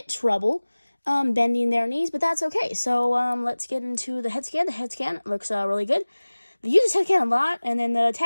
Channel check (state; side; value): inverted; both; correlation -1.00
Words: trouble bending their knees, but that's okay. So let's get into the head scan. The head scan looks really good. They use his head scan a lot, and then the